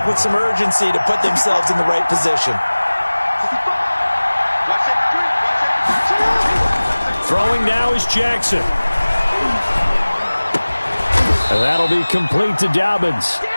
with some urgency to put themselves in the right position. Throwing now is Jackson. And that'll be complete to Dobbins.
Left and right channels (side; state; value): both; inverted; correlation -1.00